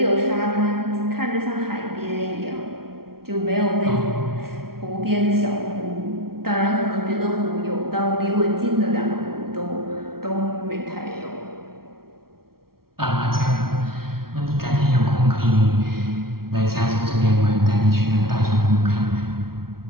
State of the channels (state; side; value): late; left; 0.94 ms